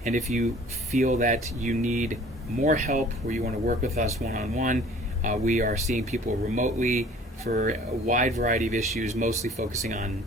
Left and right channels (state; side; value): normal; both; correlation 0.50